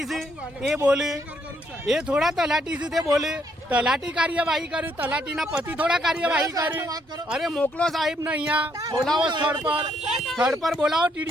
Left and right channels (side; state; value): both; normal; correlation 0.72